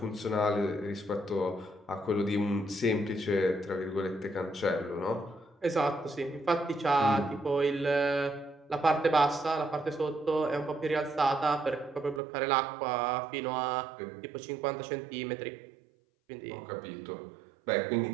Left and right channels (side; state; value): left; drops out; at 12.2 s